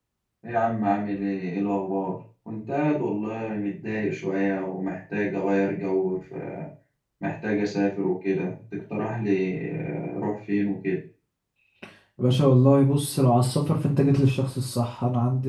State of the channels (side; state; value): both; identical; correlation 1.00